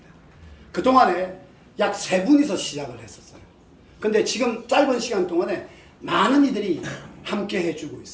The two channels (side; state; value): both; identical; correlation 1.00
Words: 그동안에 약 3분이서 시작을 했었어요. 근데 지금 짧은 시간 동안에 많은 이들이 함께 해주고